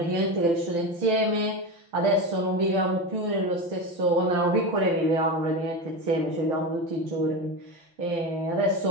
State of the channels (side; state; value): left; late; 5.9 ms